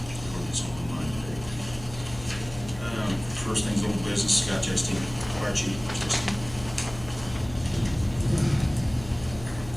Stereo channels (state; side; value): noise; left; hum, 15 dB below the sound